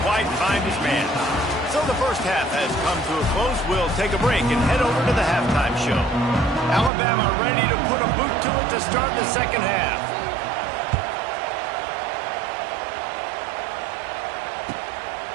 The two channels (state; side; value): drops out; left; at 6.9 s